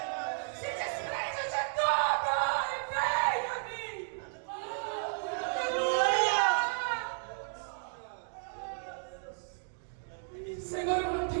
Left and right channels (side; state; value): left; silent; digital silence